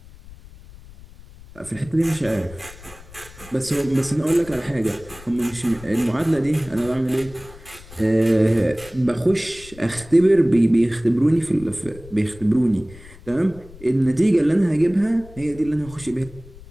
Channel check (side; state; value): left; noise; rumble, 20 dB below the sound